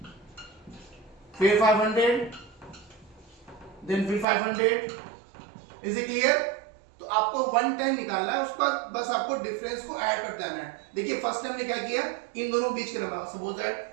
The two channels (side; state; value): left; drops out; at 4.2 s